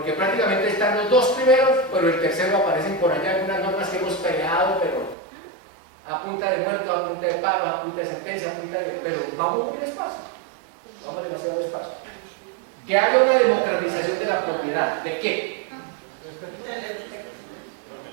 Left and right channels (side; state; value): left; drops out; at 5.2 s